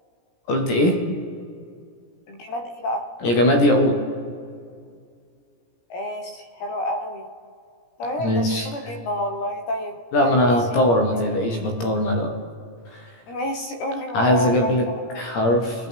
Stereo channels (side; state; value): right; late; 17 ms